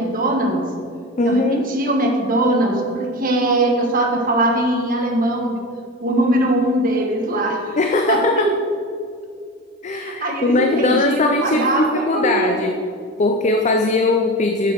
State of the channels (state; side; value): normal; both; correlation 0.28